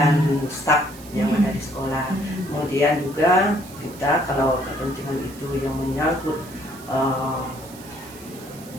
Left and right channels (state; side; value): noise; right; hiss, 19 dB below the sound